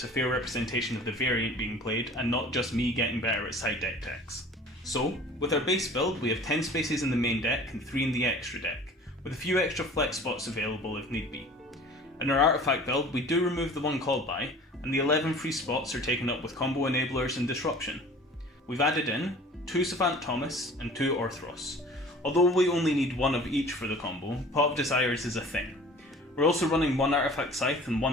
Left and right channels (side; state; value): both; normal; correlation 0.45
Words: a fair representation of the variant being played and not just me getting better at side deck decks. So, with our base build we have 10 spaces in the main deck and 3 in the extra deck, with a few extra flex spots available if need be. In our artifact build we do remove the 1 Called By, and the 11 free spots are taken up with combo enablers and disruption. We've added in 2 Savant Thomas and 2 Orthros. Although we only need 1 of each for the combo, Pot of Desires is a thing. We're also running 1 Artifact Scythe and